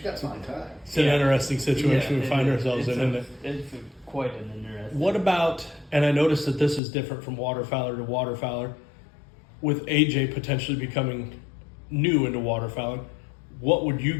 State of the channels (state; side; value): drops out; right; at 6.8 s